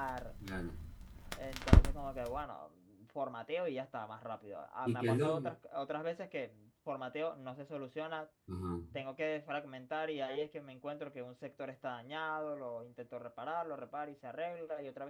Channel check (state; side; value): identical; both; correlation 1.00